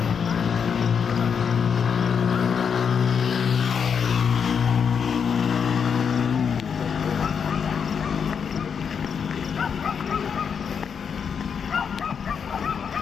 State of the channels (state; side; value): quieter; right; 6.8 dB